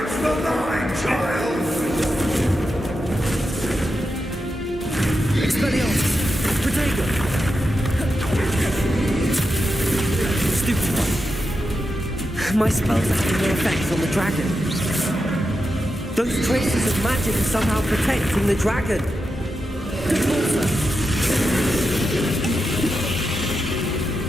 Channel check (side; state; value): both; normal; correlation 0.88